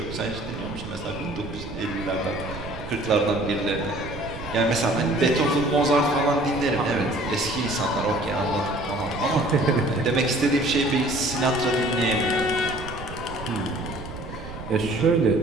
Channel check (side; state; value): right; noise; rumble, 11 dB below the sound